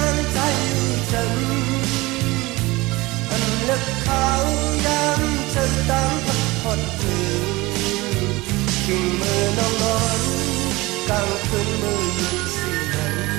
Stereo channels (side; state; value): left; quieter; 21.4 dB